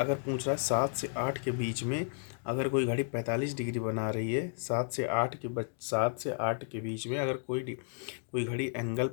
पूछ रहा है 7 से 8 के बीच में अगर कोई घड़ी 45 डिग्री बना रही है, 7 से 8 के बीच में अगर कोई घड़ी एंगल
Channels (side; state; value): right; silent; 56 dB below the other